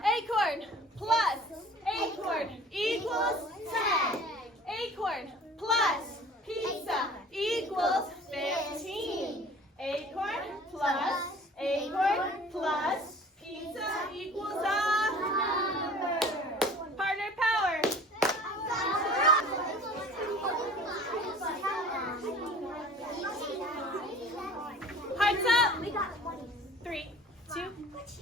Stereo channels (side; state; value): both; normal; correlation 0.46